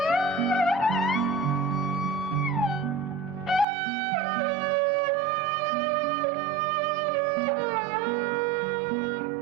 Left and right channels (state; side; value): drops out; left; at 3.7 s